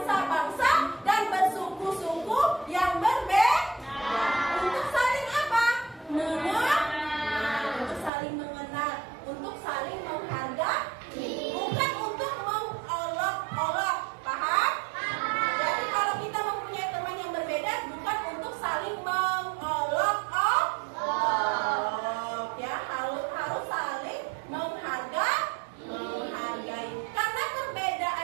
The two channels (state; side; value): drops out; left; at 8.1 s